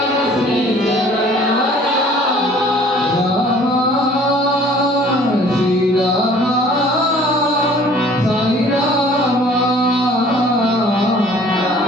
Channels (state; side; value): normal; both; correlation 0.52